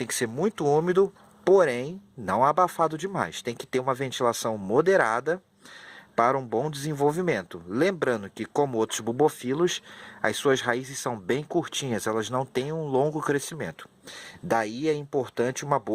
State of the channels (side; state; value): both; identical; correlation 1.00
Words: que ser muito úmido, porém não abafado demais. Tem que ter uma ventilação moderada para um bom desenvolvimento. Lembrando que, como outros bubofilos, as suas raízes são bem curtinhas, elas não têm um longo crescimento. Daí é importante uma